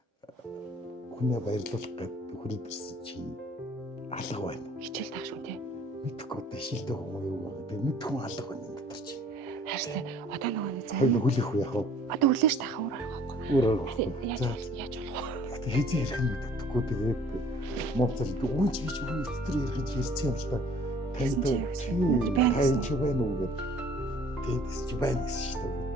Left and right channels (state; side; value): normal; both; correlation 0.54